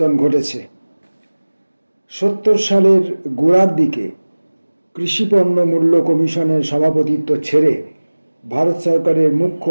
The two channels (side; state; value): both; inverted; correlation -1.00